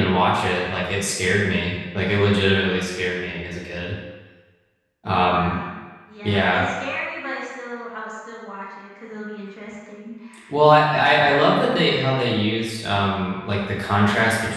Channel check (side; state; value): both; identical; correlation 1.00